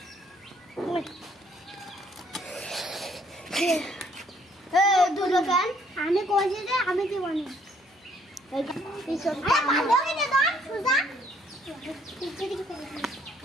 আমি কইছি যে আমি দিব না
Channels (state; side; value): normal; both; correlation 0.65